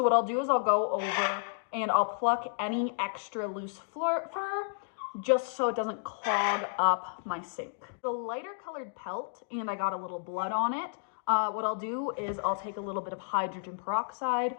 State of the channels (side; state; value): right; silent; digital silence